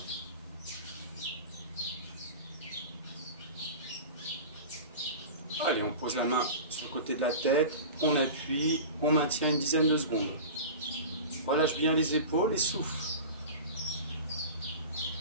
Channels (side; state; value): both; inverted; correlation -0.33